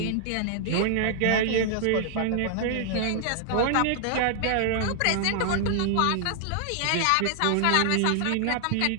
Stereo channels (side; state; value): both; different; correlation 0.00